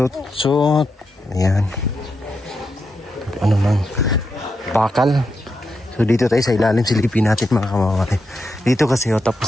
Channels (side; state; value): both; normal; correlation 0.85